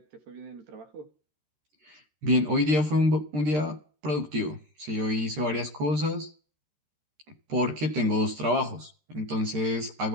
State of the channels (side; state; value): left; late; 13 ms